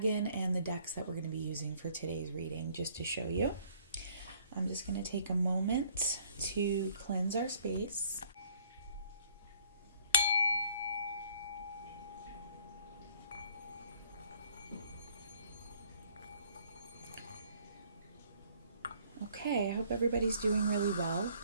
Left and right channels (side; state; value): both; inverted; correlation -0.59